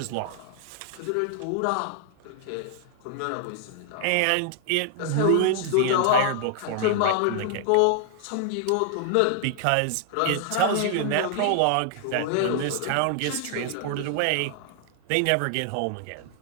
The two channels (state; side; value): different; both; correlation 0.00